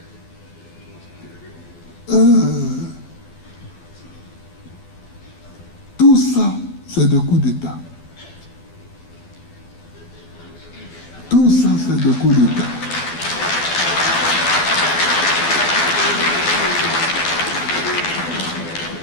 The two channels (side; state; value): right; late; 12 ms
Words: tout ça, c'est des coups d'État. Tout ça, c'est des coups d'État.